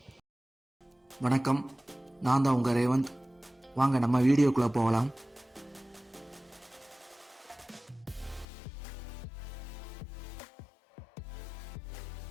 நான் தான் உங்கள் ரேவந்த். வாங்க நம்ம வீடியோக்குள்ளே போகலாம்.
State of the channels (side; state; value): right; drops out; at 8.5 s